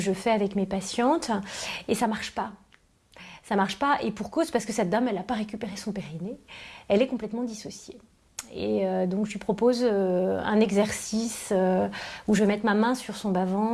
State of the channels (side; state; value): both; identical; correlation 1.00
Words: je fais avec mes patientes, et ça marche pas. Ça marche pas, et pour cause, parce que cette dame, elle n'a pas récupéré son périnée, elle est complètement dissociée. Et donc je lui propose un exercice où je vais mettre ma main sur son